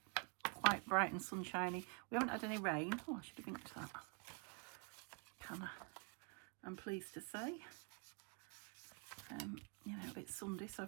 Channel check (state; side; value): quieter; left; 35.3 dB